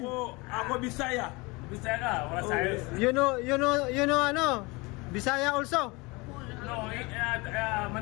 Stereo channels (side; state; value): right; quieter; 25.4 dB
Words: Ako Bisaya. Bisaya ka, wala sayos. You know ano? Bisaya also. No,